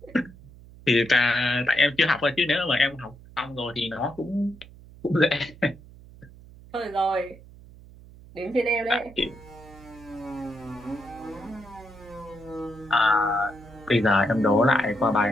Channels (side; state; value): right; noise; hum, 20 dB below the sound